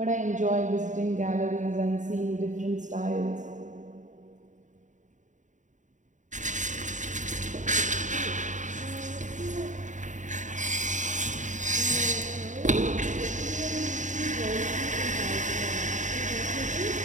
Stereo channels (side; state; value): left; late; 0.36 ms